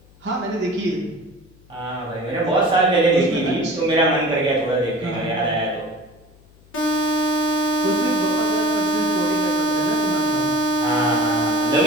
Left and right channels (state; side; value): noise; left; hum, 28 dB below the sound